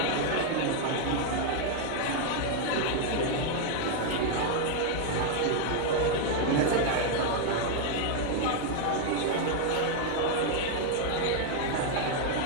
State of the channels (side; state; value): both; different; correlation 0.00